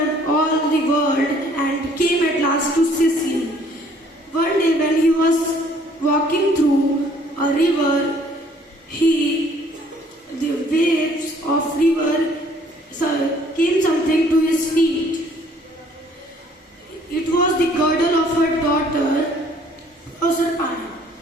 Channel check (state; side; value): normal; both; correlation 0.59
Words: all the world and came at last to Sicily. One day when he was walking through a river, the waves of river came something to his feet. It was the girdle of her daughter Proserpine.